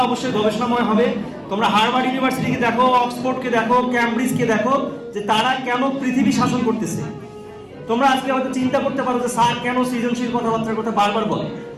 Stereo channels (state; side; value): identical; both; correlation 1.00